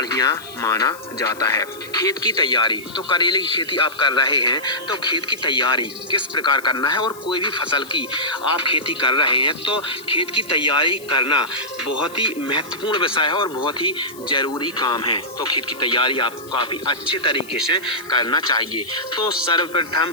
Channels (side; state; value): left; noise; hiss, 19 dB below the sound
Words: माना जाता है। खेत की तैयारी, तो करेले की खेती आप कर रहे हैं तो खेत की तैयारी किस प्रकार करना है, और कोई भी फसल की आप खेती कर रहे हैं तो खेत की तैयारी करना बहुत ही महत्वपूर्ण विषय है और बहुत ही जरूरी काम है। तो खेत की तैयारी आपको काफ़ी अच्छे तरीके से करना चाहिए। तो